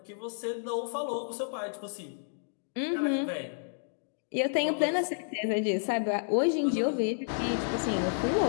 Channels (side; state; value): right; silent; digital silence